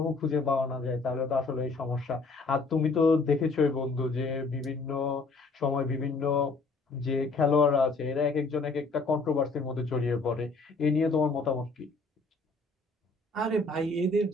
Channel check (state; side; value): quieter; right; 3.7 dB